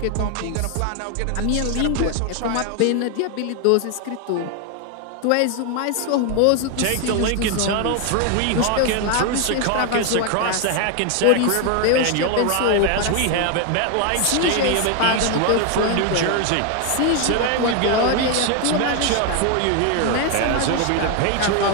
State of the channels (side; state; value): both; different; correlation 0.01